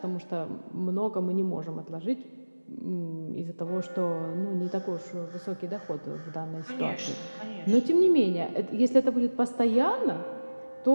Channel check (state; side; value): inverted; both; correlation -1.00